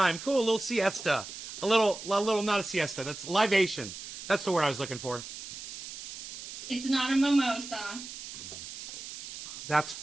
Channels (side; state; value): right; noise; hiss, 11 dB below the sound